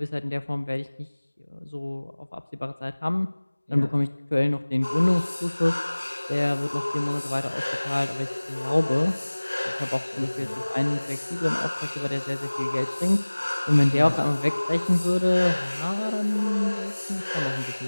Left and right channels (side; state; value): both; inverted; correlation -1.00